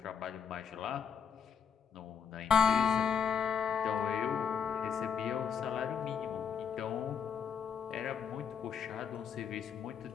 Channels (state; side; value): quieter; right; 7.1 dB